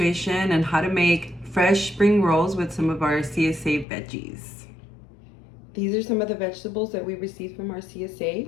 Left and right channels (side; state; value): right; drops out; at 3.9 s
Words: on how to make fresh spring rolls with some of our CSA veggies. These are some of the vegetables that we received from our